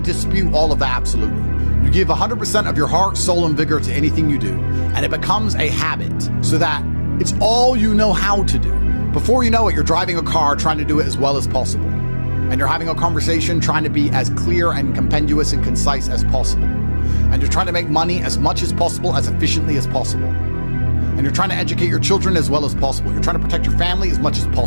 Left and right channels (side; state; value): both; inverted; correlation -1.00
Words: dispute all of that absolutely. You give 100% of your heart, soul, and vigor to anything you do, and it becomes a habit so that it's all you know how to do. Before you know it, you're driving a car trying to do it as well as possible. And you're having a conversation trying to be as clear and compendious and concise as possible. And you're trying to make money as much as possible, as efficiently as possible. And you're trying to educate your children as well as possible. You're trying to protect your family as much as